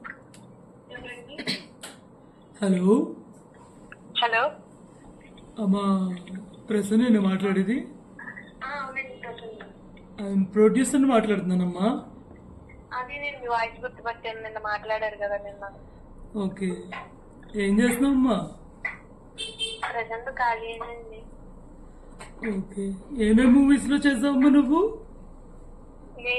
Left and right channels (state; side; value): identical; both; correlation 1.00